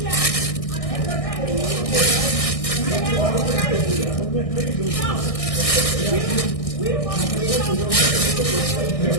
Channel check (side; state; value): right; late; 1.6 ms